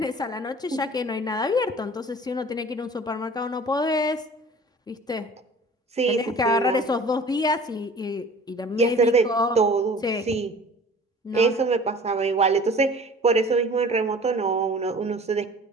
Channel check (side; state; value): both; normal; correlation 0.45